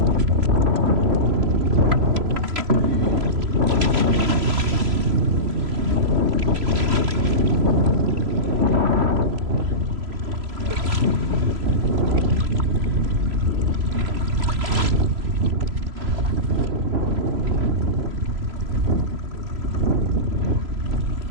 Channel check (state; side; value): late; left; 3.0 ms